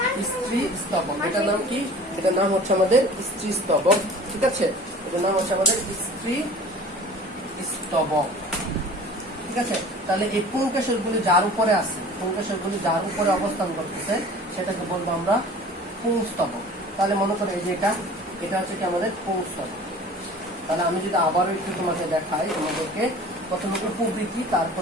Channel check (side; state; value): both; normal; correlation 0.44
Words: স্ত্রী স্তবক, এটার নাম কি? এটার নাম হচ্ছে আমাদের স্ত্রী স্তবক, ঠিক আছে। এটার নাম হচ্ছে আমাদের স্ত্রী স্তবক, ঠিক আছে। তাহলে এই পুংকেশরগুলি যার উপরে আছে, পুংকেশরগুলি যার উপরে অবস্থান করতেছে, সেটাকে বলবো আমরা পুংস্তবক। তাহলে মনে করো এই যে এটা হচ্ছে কি আমাদের পুংস্তবক। তাহলে আমি যদি আবারও একটু তোমাকে দেখাই, তোমাদেরকে প্রথমে উপবৃত্তি,